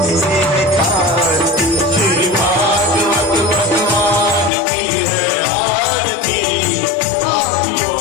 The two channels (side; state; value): right; drops out; at 4.5 s